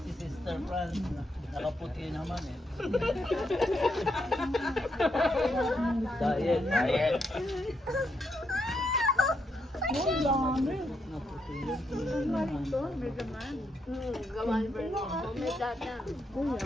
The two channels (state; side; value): normal; both; correlation 0.79